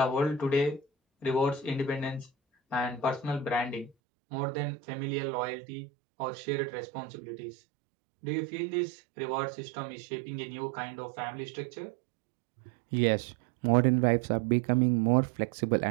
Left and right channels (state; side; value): drops out; left; at 4.0 s